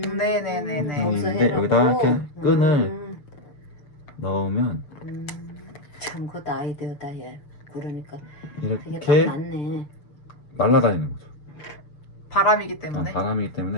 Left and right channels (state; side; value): late; right; 6.8 ms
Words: 네네네네. 거기서 있는데 해놓고. 여기다 이렇게 끈을 넣으면 참 그것도 아이디어다 얘. 그러니까 그게 딱 이렇게 맞네. 날아다니는 거죠. 바람이기 때문에. 바람이기